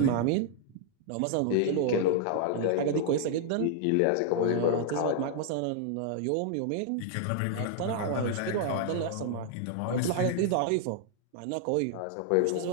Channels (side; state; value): both; different; correlation -0.01